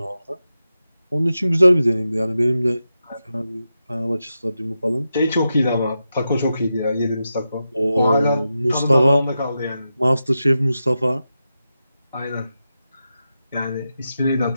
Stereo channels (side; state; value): both; inverted; correlation -0.89